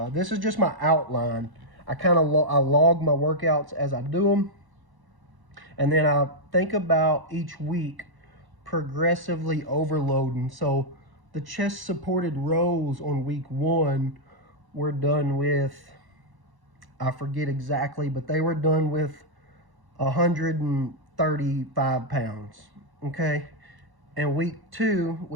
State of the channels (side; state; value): left; late; 1.1 ms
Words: This is just my outline. I log my workouts as I do them, and then I think about each week progressively overloading. So the chest supported rows on week 1 were done with, I forget exactly, but they were done with 135 pounds, okay? And week 2,